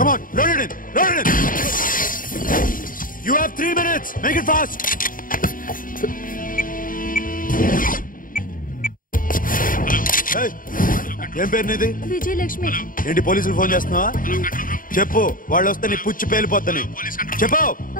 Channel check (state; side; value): late; right; 0.40 ms